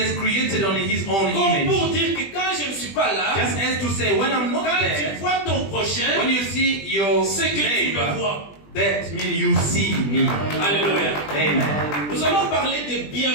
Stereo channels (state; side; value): late; right; 20 ms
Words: created on his own Comme image. pour dire que quand je ne suis pas là, Just as to say, when I'm not quand there, tu vois ton prochain, when you see your c'est que tu le neighbor, vois. That means you see me. Alléluia. Amen. Nous allons parler des